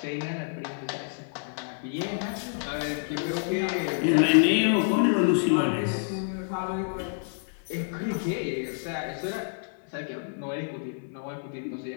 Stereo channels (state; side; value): silent; right; 58 dB below the other